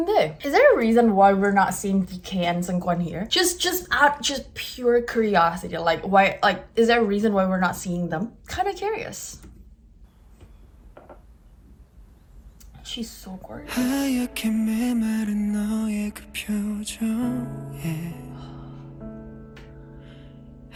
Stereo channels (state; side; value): identical; both; correlation 1.00